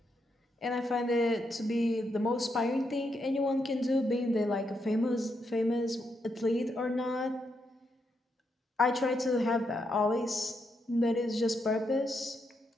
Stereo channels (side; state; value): both; normal; correlation 0.81